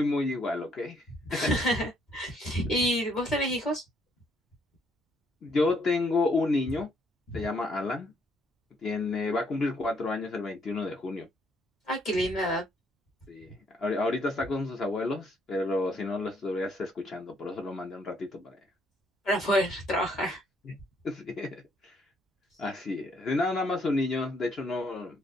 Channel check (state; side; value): normal; both; correlation 0.69